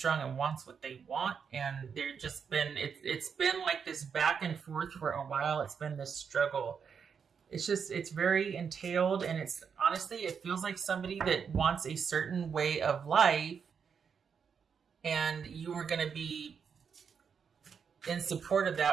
and wants what they want, and they're just been it's been like this back and forth for a while. It's been this struggle. It's very entailed, and it's honestly, it feels like somebody that wants a certain way of life, and you were going to be in support of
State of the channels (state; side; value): quieter; left; 6.6 dB